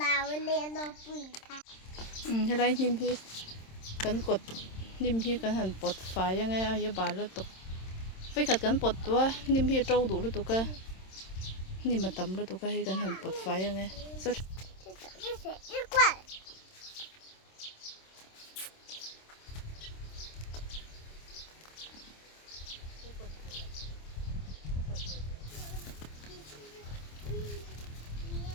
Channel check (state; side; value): late; right; 27 ms